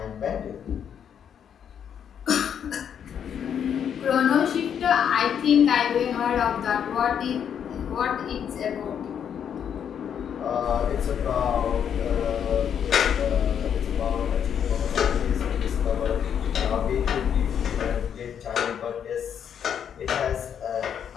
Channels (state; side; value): quieter; right; 8.4 dB